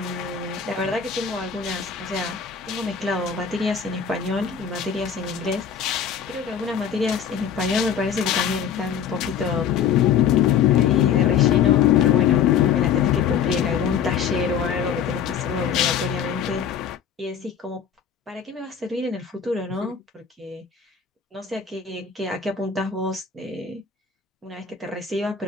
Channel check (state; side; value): quieter; right; 7.6 dB